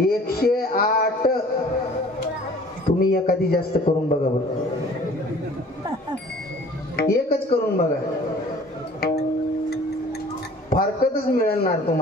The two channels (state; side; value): normal; both; correlation 0.50